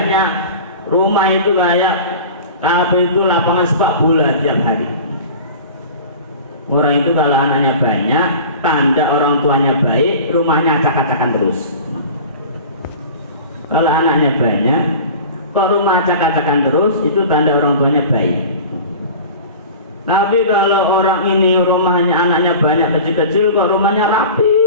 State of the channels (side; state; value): both; inverted; correlation -0.38